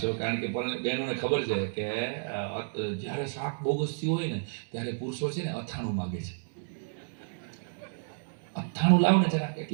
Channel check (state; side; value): silent; left; digital silence